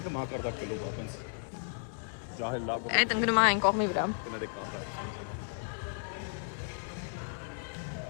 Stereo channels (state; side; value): silent; right; digital silence